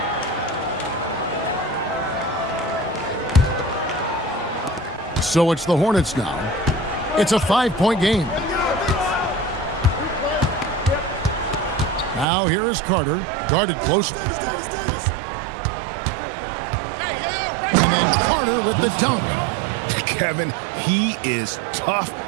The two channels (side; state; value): left; drops out; at 12.2 s